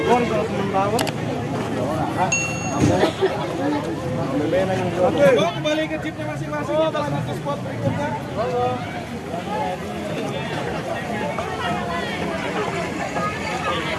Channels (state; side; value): identical; both; correlation 1.00